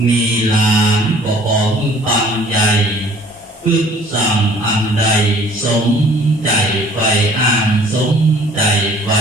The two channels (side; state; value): both; normal; correlation 0.53